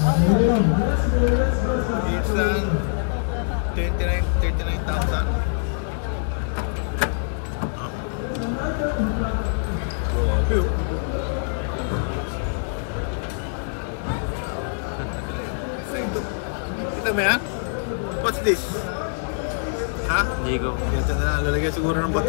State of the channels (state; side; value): silent; right; digital silence